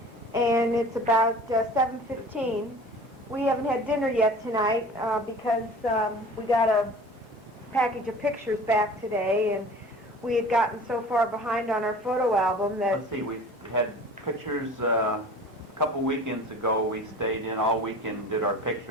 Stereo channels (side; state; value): both; normal; correlation 0.42